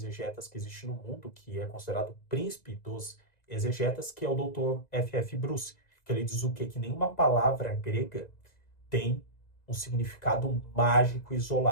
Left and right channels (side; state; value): right; late; 2.0 ms